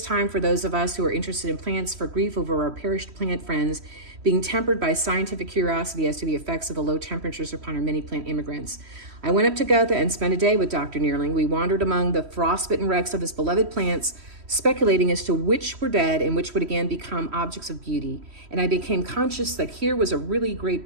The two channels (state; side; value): late; left; 3.1 ms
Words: time for those of us who are interested in plants, for grief over our perished plant friends being tempered by scientific curiosity as to the effects of the low temperatures upon our many plant immigrants. I went up to Gotha and spent a day with Dr. Nealing. We wandered among the frostbitten wrecks of his beloved plants, speculating as to which were dead and which would again become objects of beauty. And I became conscious that here was a really great